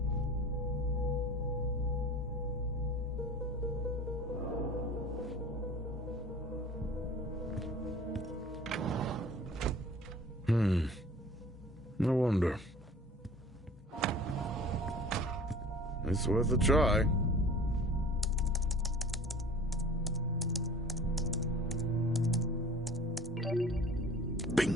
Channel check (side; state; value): both; normal; correlation 0.43